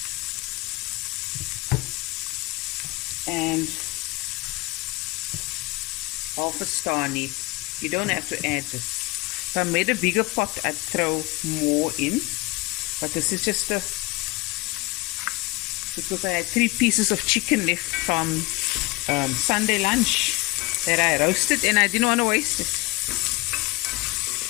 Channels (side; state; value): right; quieter; 23.2 dB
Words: And half a star anise. You don't have to add this. If I made a bigger pot, I'd throw more in. But this is just because I had 3 pieces of chicken left from Sunday lunch that I roasted and I didn't want to waste it.